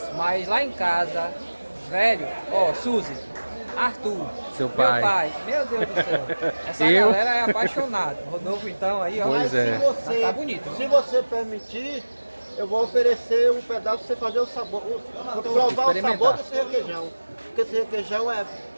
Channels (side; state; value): both; inverted; correlation -1.00